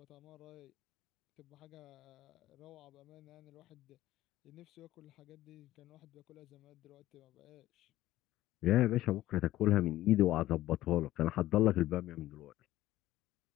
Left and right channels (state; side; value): quieter; right; 15.1 dB